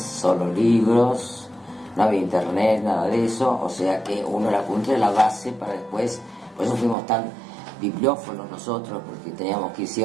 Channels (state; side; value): drops out; left; at 7.0 s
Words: libros, no había internet, nada de eso, o sea que uno el apunte era la base para después, por eso fuimos tan bibliófonos nosotros, porque teníamos que ir sí